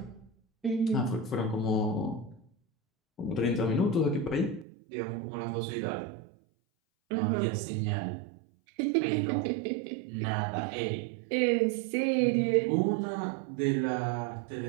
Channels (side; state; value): left; drops out; at 4.7 s